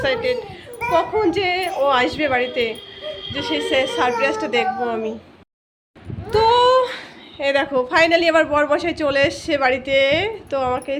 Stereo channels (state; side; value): identical; both; correlation 1.00